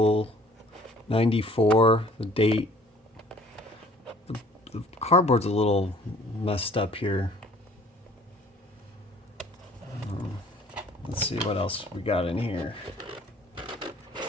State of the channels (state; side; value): normal; both; correlation 0.54